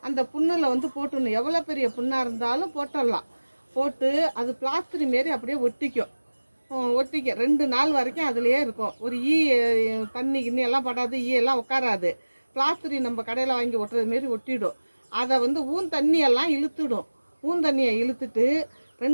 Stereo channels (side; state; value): both; inverted; correlation -1.00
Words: அந்த புண்ணில் வந்து போட்டுடணும். எவ்வளோ பெரிய புண்ணாக இருந்தாலும் போட்டுடலாம். போட்டு அது பிளாஸ்டரி மாரி அப்படியே ஒட்டிக்கும். 2 நாள் வரைக்கும் அதுலேயே இருக்கும். ஒரு தண்ணி கிண்ணி எல்லாம் படாது, எல்லாம் உட்காராது. பிளாஸ்டரி நம்ம கடையில் வாங்கி ஒட்டுறது மாரி ஒட்டிடும். அதை வந்து தண்ணியெல்லாம் இழுத்துடும். தண்ணியை இழுத்துட்டு